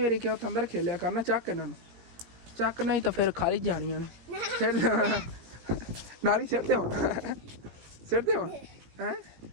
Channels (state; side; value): late; left; 17 ms